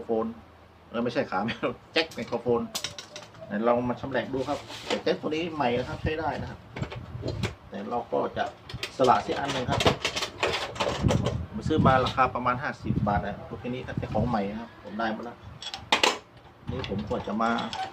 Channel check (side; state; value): both; identical; correlation 1.00